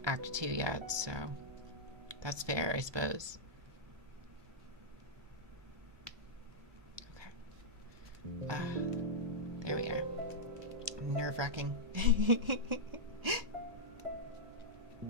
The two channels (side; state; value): left; late; 1.2 ms